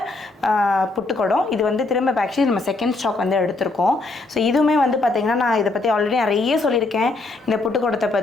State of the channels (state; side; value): quieter; right; 3.3 dB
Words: புட்டுக்குடம். இது வந்து திரும்ப ஆக்சுவலி நம்ம செகண்ட் ஸ்டாக் வந்து எடுத்திருக்கோம். ஸோ இதுவுமே வந்து பார்த்திங்கன்னா நான் இதை பற்றி ஆல்ரெடி நிறைய சொல்லியிருக்கேன் இந்த புட்டுக்குடத்தை